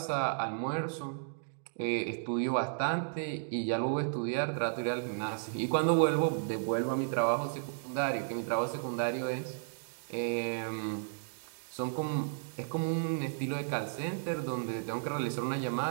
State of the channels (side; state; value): left; silent; digital silence